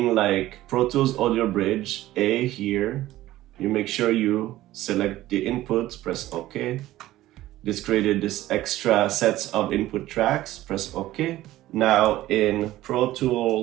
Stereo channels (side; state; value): left; quieter; 15.5 dB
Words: like Pro Tools Audio Bridge A here. You make sure you select the inputs, press OK. This created this extra sets of input tracks, press OK. Now in Pro